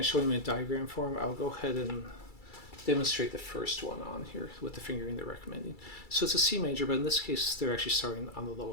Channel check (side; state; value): right; late; 2.3 ms